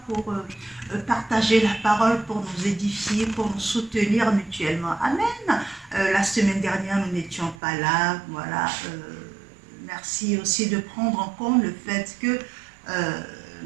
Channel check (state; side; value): drops out; left; at 7.6 s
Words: pour partager la parole, pour nous édifier, pour nous soutenir mutuellement. Amen. La semaine dernière, nous n'étions pas là. Voilà. Merci aussi de prendre en compte le fait que